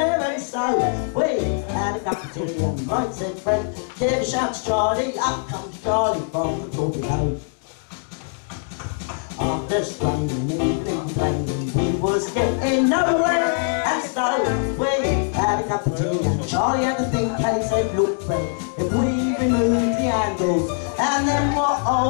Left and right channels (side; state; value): right; silent; 64 dB below the other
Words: and so we had a cup of tea, and right, said Fred, give a shout to Charlie, up comes Charlie from the torpedo. After straining, even complaining, we was getting nowhere, and so we had a cup of tea, and Charlie had a think, and he said, look Fred, if we remove the handles, and then we'll